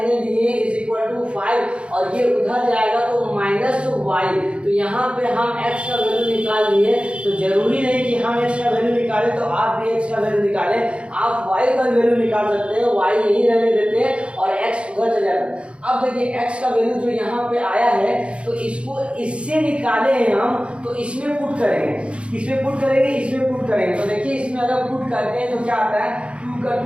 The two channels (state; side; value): late; left; 0.059 ms